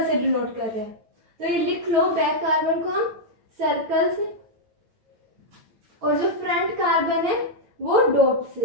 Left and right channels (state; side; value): late; left; 9.0 ms